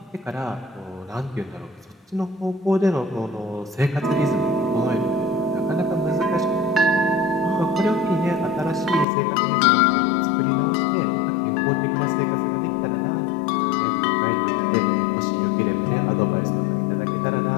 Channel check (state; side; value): drops out; right; at 9.1 s